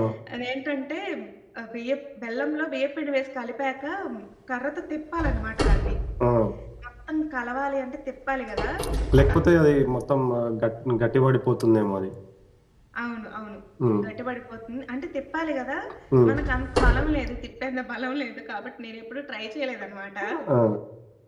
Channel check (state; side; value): identical; both; correlation 1.00